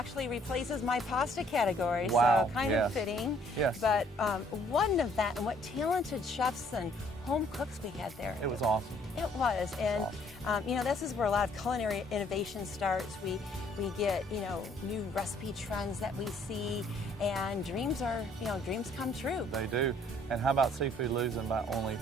replaces my pasta category. Wow. So kind of fitting. Yes. But one of that, and what talented chefs and home cooks we had there. It was awesome. It was. And, you know, this is where a lot of culinary innovation starts. We get, you know, new recipe trends that we see, and dreams come true. They do. And how about seafood losing by only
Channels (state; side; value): normal; both; correlation 0.62